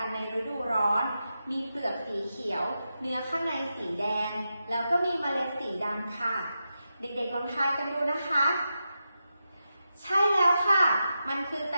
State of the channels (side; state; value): both; inverted; correlation -0.89